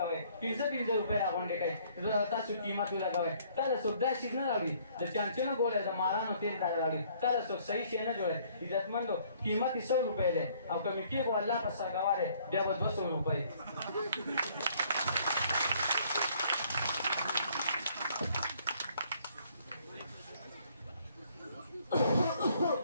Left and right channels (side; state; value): both; inverted; correlation -0.62